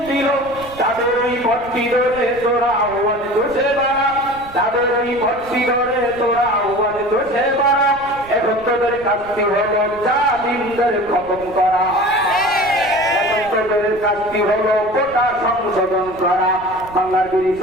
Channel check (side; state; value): right; noise; rumble, 19 dB below the sound